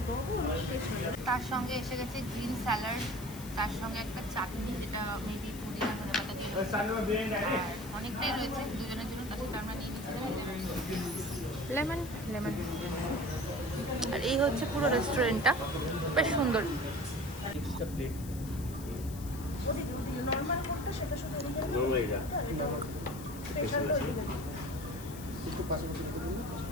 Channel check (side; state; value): left; noise; hiss, 15 dB below the sound